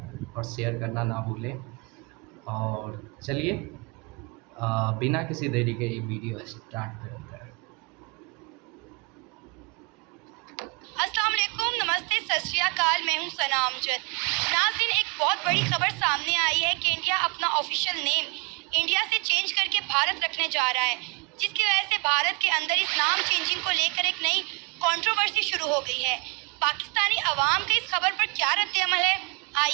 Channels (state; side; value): quieter; left; 31.4 dB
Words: और शेयर करना ना भूलें। और चलिए बिना किसी देरी के ये वीडियो स्टार्ट करते हैं। अस्सलाम वालेकुम, नमस्ते, सत श्री अकाल। मैं हूं सना अमजद। नाज़रीन, एक बहुत बड़ी खबर सामने आई है कि इंडिया अपना ऑफिशियल नेम इंडिया से चेंज करके भारत रखने जा रहा है, जिसकी वजह से भारत के अंदर इस नाम चेंजिंग को लेकर एक नई कंट्रोवर्सी शुरू हो गई है। पाकिस्तानी अवाम का इस खबर पर क्या रद्द-ए-अमल है,